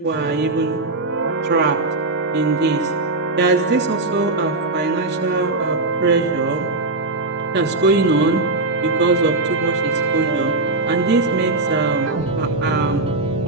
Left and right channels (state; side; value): quieter; left; 3.2 dB